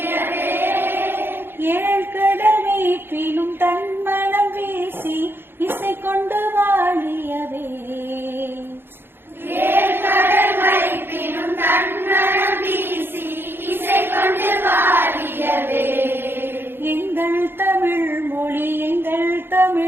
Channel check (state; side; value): late; left; 0.10 ms